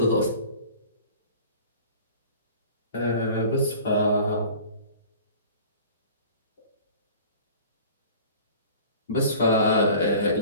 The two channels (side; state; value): both; inverted; correlation -0.44